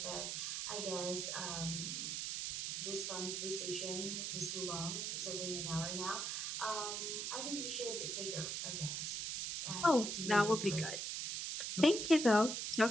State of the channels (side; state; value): right; noise; hiss, 2 dB below the sound